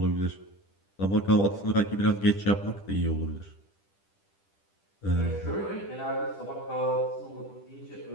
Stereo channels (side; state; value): right; late; 10 ms